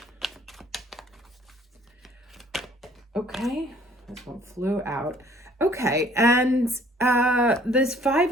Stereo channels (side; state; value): both; normal; correlation 0.57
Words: Okay, this one flew out. Okay, and this 5